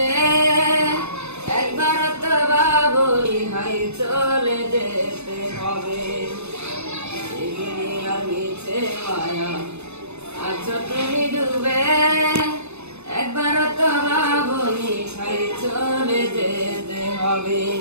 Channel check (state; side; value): late; left; 0.81 ms